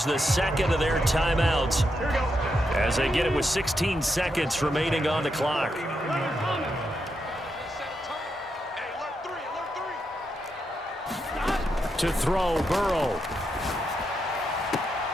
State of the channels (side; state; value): both; normal; correlation 0.83